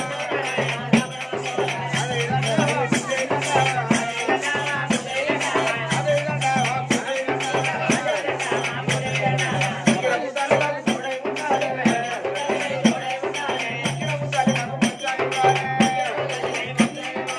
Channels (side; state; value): both; identical; correlation 1.00